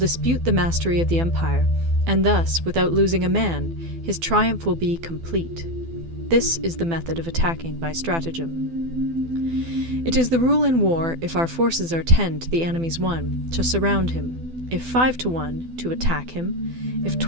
the mastery of the empire, and thus, without losing a man, his triumph will be complete. This is the method of attacking by stratagem. It is the rule in war, if our forces are 10 to the enemy's 1, to surround him; if 5 to 1, to attack him; if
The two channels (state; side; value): late; left; 12 ms